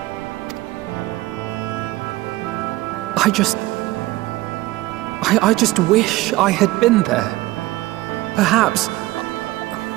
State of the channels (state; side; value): quieter; left; 18.5 dB